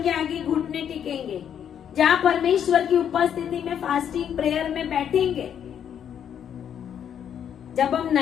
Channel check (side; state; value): right; quieter; 8.9 dB